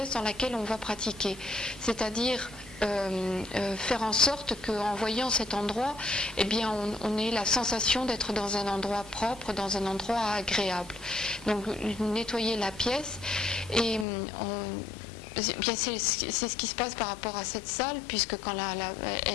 dans laquelle on va pratiquer, c'est-à-dire faire en sorte qu'en voyant cet endroit, eh bien, on ait la sensation d'être dans un endroit propre, dans un endroit agréable. Donc nettoyer la pièce et bien, c'est ce qui se passe par rapport à cette salle, puisque quand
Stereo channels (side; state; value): right; drops out; at 14.1 s